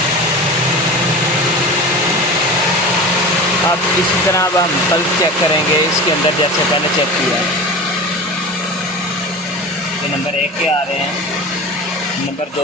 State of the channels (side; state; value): both; normal; correlation 0.32